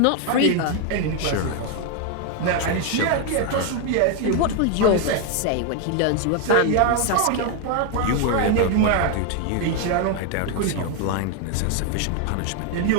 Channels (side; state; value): both; different; correlation 0.01